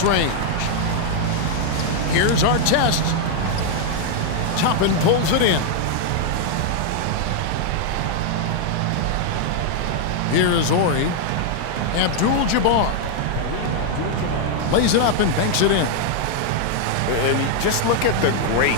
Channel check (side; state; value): both; different; correlation 0.00